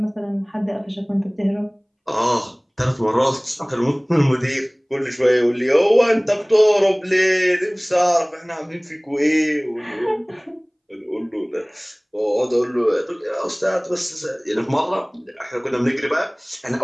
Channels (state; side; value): identical; both; correlation 1.00